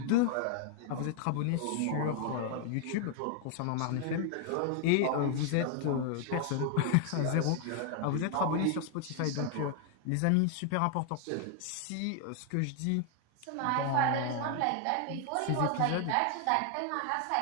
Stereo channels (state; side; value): different; both; correlation 0.00